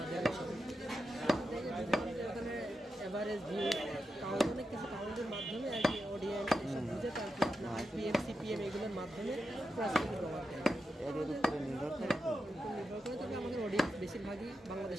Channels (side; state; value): both; normal; correlation 0.87